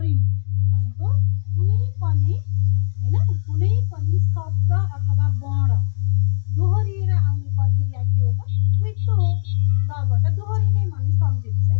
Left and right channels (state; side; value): silent; right; digital silence